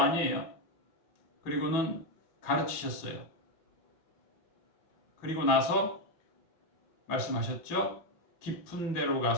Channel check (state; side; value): late; right; 5.7 ms